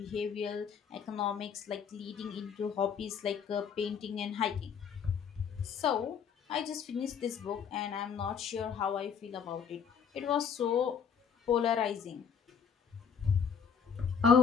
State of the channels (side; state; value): right; quieter; 7.0 dB